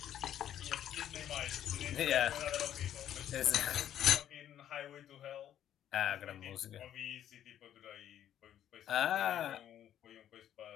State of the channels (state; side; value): quieter; right; 10.8 dB